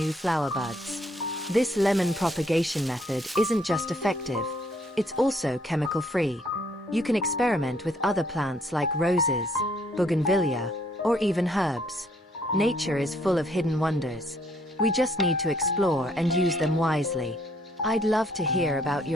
flower buds. This lemon propagation method isn't just effective, it's also chemical-free. You can experiment with other plants like roses, bougainvillea, or even herbs. Nature is full of hidden wonders. We just need to explore and use them wisely. I'd love to hear about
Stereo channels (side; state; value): both; normal; correlation 0.66